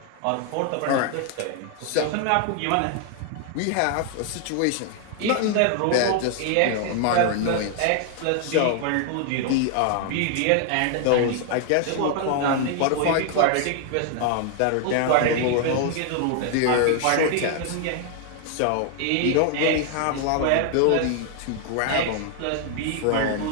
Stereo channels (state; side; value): different; both; correlation 0.00